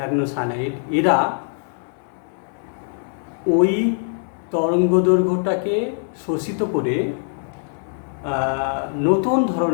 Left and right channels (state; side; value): silent; right; 64 dB below the other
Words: এরা ওই তরঙ্গদৈর্ঘ্যটাকে শোষিত করে নতুন